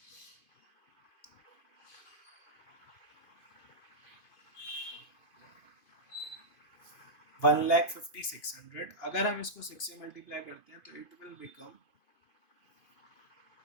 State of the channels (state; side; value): late; right; 2.5 ms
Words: 1,56,000। अगर हम इसको 6 से मल्टीप्लाई करते हैं तो इट विल बिकम